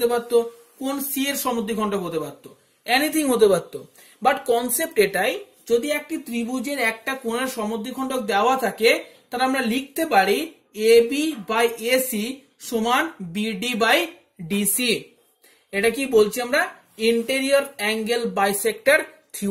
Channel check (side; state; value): both; identical; correlation 1.00